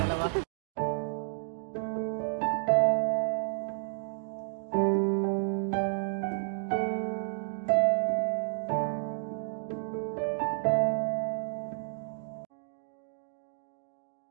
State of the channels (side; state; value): left; silent; digital silence